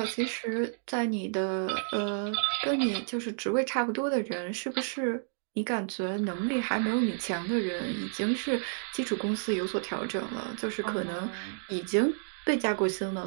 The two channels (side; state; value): left; silent; digital silence